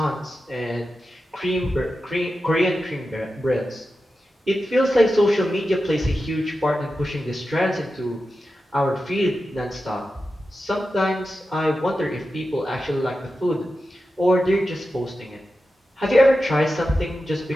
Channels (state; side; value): normal; both; correlation 0.92